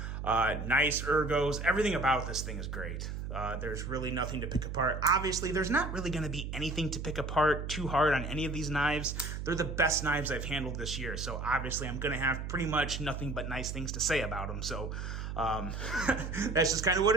Nice ergos. Everything about this thing is great. There's really nothing to pick apart. Obviously, there's not really going to be anything to pick apart too hard on any of these knives. They're the best knives I've handled this year. So obviously, I'm going to have pretty much nothing but nice things to say about them. So that's just kind of what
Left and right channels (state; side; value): noise; right; hum, 5 dB below the sound